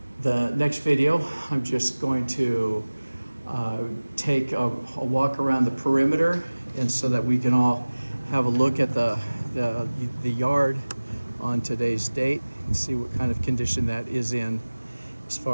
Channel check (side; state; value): both; inverted; correlation -1.00